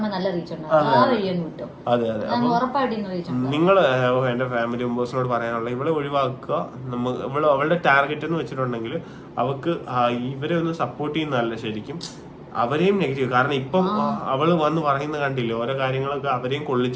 നല്ല റീച്ച് ഉണ്ടാവും. ആ വഴിയൊന്ന് വിട്ടോ, ഉറപ്പായിട്ട് റീച്ച് ഉണ്ടാവും. നിങ്ങൾ എന്റെ ഫാമിലി മെമ്പേഴ്സിനോട് പറയാനുള്ള ഇവളെ ഒഴിവാക്കുക. അവളുടെ ടാർഗറ്റ് എന്ന് വെച്ചിട്ടുണ്ടെങ്കിൽ അവക്ക് ഇവരെ ഒന്ന് സപ്പോർട്ട് ചെയ്യുന്നതല്ല ശരിക്കും, അവരെയും നെഗറ്റീവ്. കാരണം ഇപ്പം അവള് വന്ന് പറയുന്നത് കണ്ടില്ലേ, ഓരോ കാര്യങ്ങളൊക്കെ അവരെയും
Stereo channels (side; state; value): both; identical; correlation 1.00